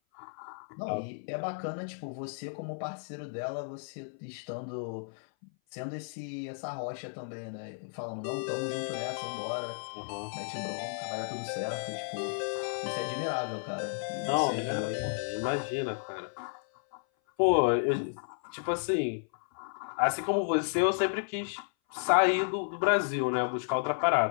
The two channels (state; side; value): silent; right; 56 dB below the other